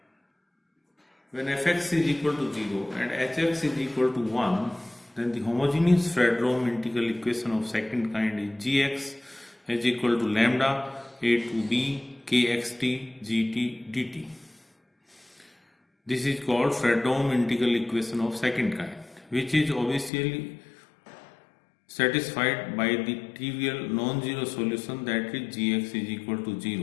When fx is equal to 0 and hx is equal to 1, then the homogeneous Fredholm integral equation of second kind is gx is equal to lambda a to b kxt gt dt. This is called Fredholm integral equation of second kind, which is obviously satisfied by the trivial non-zero solution, that is gx is equal to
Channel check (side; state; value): right; drops out; at 20.1 s